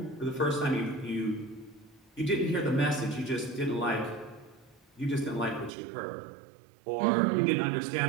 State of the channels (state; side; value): drops out; left; at 5.7 s